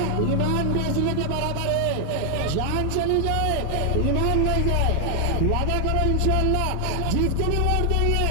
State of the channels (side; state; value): both; different; correlation 0.00